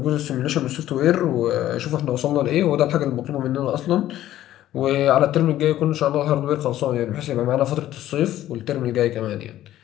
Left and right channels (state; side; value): quieter; right; 13.3 dB